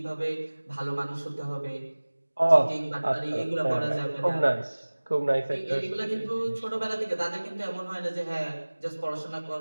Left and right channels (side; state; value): both; inverted; correlation -1.00